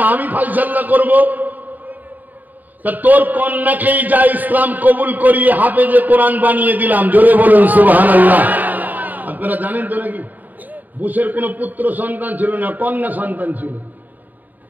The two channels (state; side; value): late; left; 0.084 ms